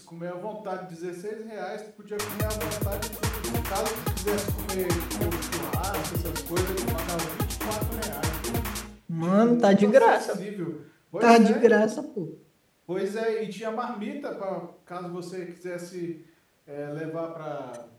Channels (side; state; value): both; identical; correlation 1.00